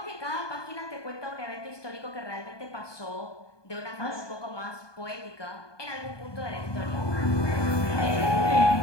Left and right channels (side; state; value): right; late; 1.2 ms